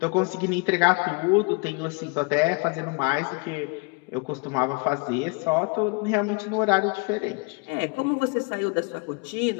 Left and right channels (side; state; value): right; quieter; 30.8 dB